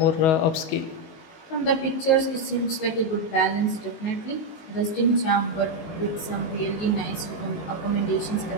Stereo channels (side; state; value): right; late; 19 ms